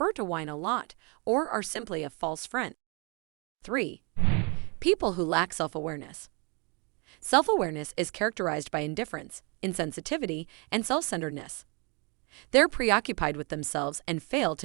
to whine a lot, or are simply a false friend. 3. People who lack self-awareness. Self-awareness is characterized by indifference, insensitivity, and self-centeredness. They're preoccupied with themselves and fail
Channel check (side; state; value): left; quieter; 31.9 dB